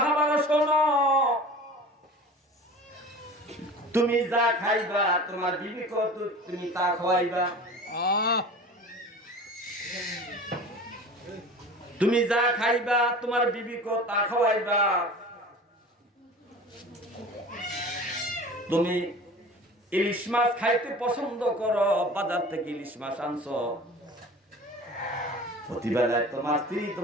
শোনো, তুমি যা খাইবা তোমার বিবিকে তুমি তা খাওয়াইবা। তুমি যা খাইবা তোমার বিবিকে তা খাওয়াইবা। তুমি ইলিশ মাছ খাইতে পছন্দ করো, বাজার থেকে ইলিশ মাছ আনছো, প্রতিবেলায় তোমার স্ত্রী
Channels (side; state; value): both; normal; correlation 0.39